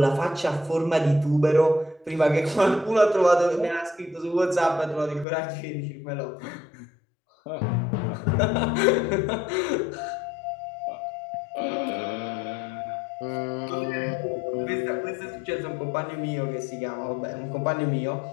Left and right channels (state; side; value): drops out; right; at 5.2 s